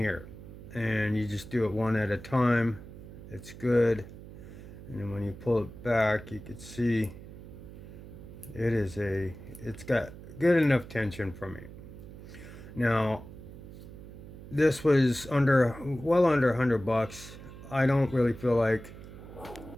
and you just do it one at a time. It's good. And then when you pull it back, you can see it's got good enough tension for me. Now this was well under $100. I don't really feel like,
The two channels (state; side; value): noise; right; hum, 15 dB below the sound